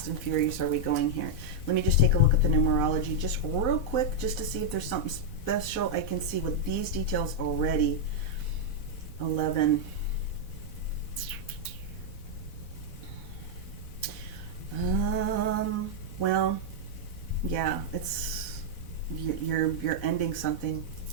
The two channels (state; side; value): late; right; 4.1 ms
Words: and furious are we going here? Let me just take a look at the numerology just real quick, just to see if there's something special I can see with these details already. 11. Well, yeah, it's you're ending something.